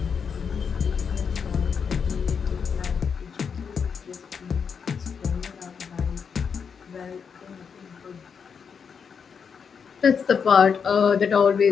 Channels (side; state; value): right; quieter; 6.4 dB